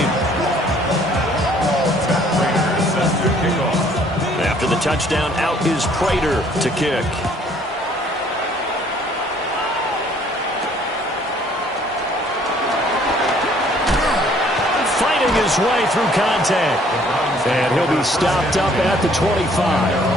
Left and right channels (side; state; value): both; normal; correlation 0.60